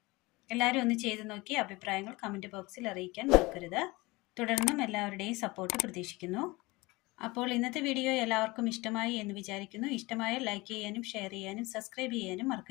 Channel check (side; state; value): right; quieter; 22.7 dB